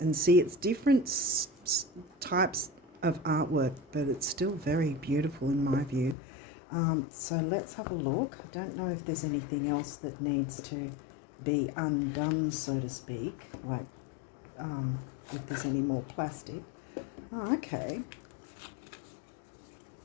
And see, it's different types of artwork, but it's still very beautiful in my view. So let's have a look. I don't know if there's anything else that needs to be undone, so to speak, like if there's any more plastic. Oh, okay.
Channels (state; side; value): drops out; right; at 6.2 s